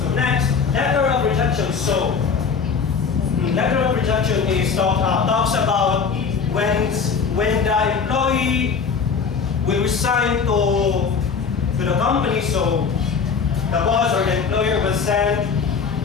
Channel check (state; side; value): quieter; right; 5.8 dB